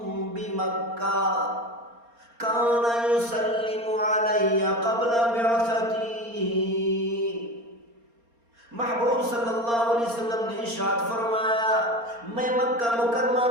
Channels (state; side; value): late; left; 4.3 ms